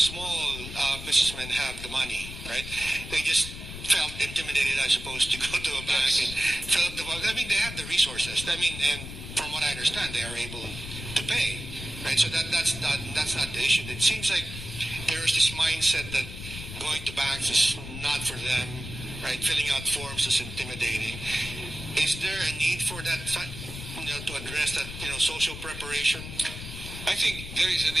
businessmen have the money, right? They just felt intimidated, I suppose, to go to a bank and fill up the form. I mean, they have the resources. I mean, and from what I understand, they are able to pay, right? So that's not the issue. It seems like there's this mindset that going to banks is not for them, right? Filling out forms is intimidating. Is there a need for that, to address that, social preparation? I think there is a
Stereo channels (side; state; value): left; noise; rumble, 10 dB below the sound